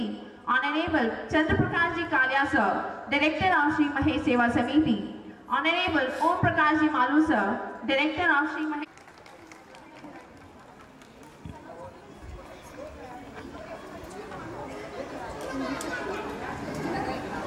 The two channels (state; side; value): identical; both; correlation 1.00